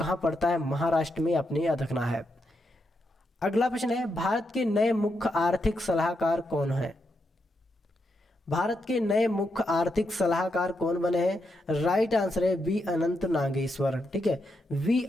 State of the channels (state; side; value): normal; both; correlation 0.83